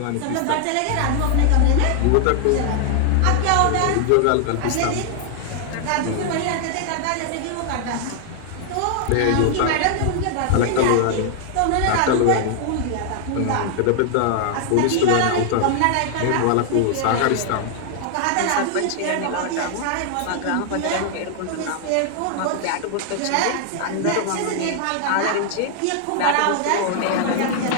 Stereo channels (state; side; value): different; both; correlation 0.00